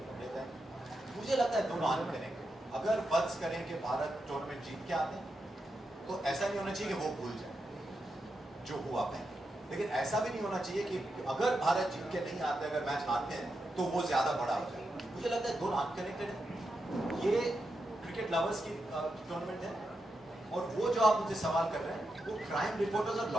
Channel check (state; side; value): normal; both; correlation 0.86